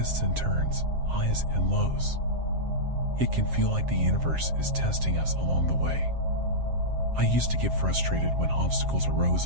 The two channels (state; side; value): late; left; 7.5 ms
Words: and turns, highs and lows. It can feel like the universe is testing us along the way. I used to get frustrated when obstacles arose